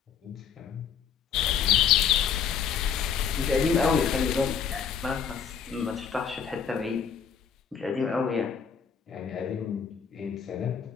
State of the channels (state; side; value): quieter; right; 7.2 dB